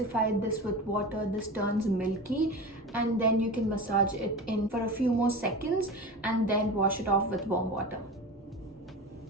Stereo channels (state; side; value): normal; both; correlation 0.29